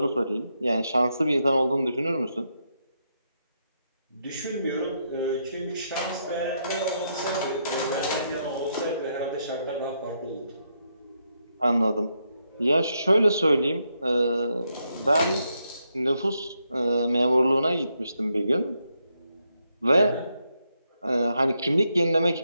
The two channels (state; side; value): inverted; both; correlation -0.80